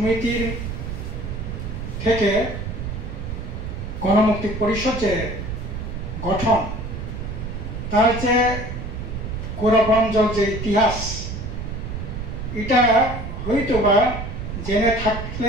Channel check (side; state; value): right; noise; rumble, 6 dB below the sound